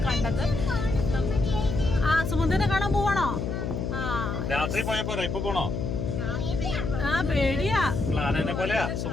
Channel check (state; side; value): noise; left; hum, 3 dB below the sound